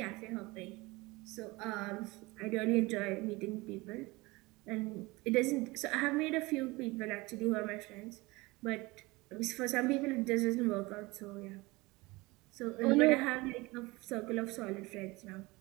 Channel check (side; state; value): left; quieter; 22.7 dB